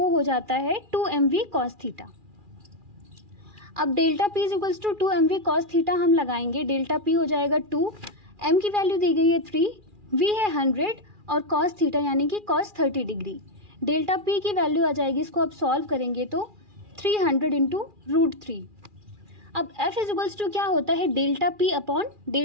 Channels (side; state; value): left; late; 2.4 ms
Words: हो जाता है 2mv कॉस थीटा। अब delta P is equals to 2mv cos theta हम लगाएंगे, डेल्टा P हो जाएगा 2, m की वैल्यू दी गई है 3, v है 100 और कॉस थीटा यानी कि कॉस 30 डिग्री। डेल्टा P की वैल्यू आ जाएगी, इसको अब सॉल्व करेंगे तो 300 इंटू √3। अब F इज इक्वल्स टू क्या होता है delta P upon